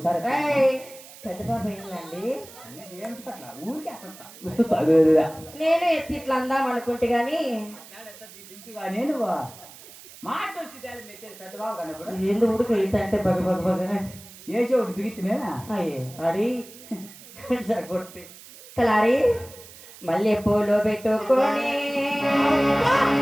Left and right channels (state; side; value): noise; right; hiss, 19 dB below the sound